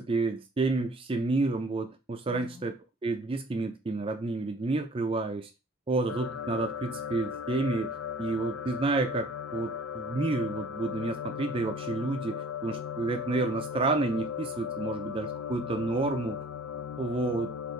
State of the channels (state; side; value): normal; both; correlation 0.51